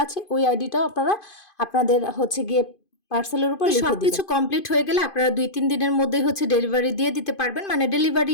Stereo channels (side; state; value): right; late; 2.5 ms